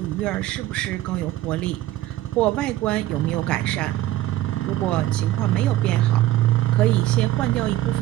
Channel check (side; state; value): left; quieter; 14.9 dB